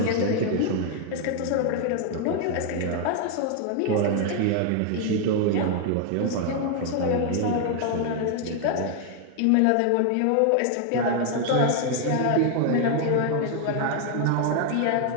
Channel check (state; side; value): different; both; correlation 0.00